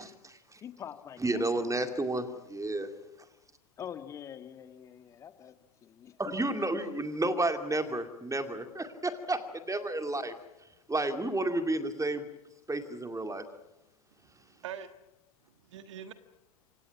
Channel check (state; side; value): normal; both; correlation 0.65